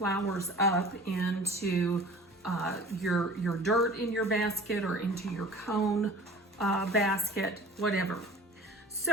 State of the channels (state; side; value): normal; both; correlation 0.42